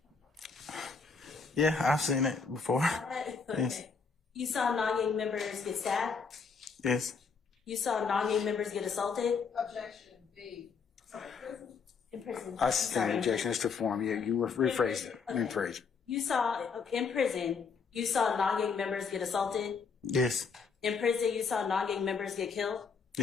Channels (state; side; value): quieter; right; 5.3 dB